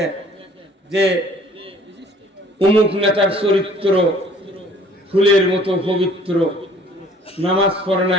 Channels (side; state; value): both; normal; correlation 0.55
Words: যে অমুক নেতার চরিত্র ফুলের মতো পবিত্র, নামাজ পড়ে না